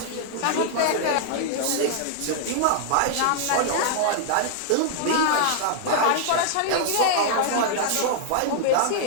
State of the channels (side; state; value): both; different; correlation -0.01